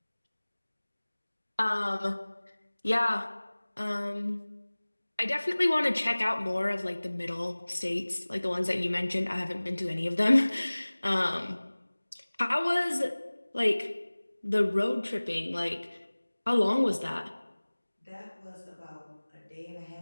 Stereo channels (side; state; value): both; inverted; correlation -1.00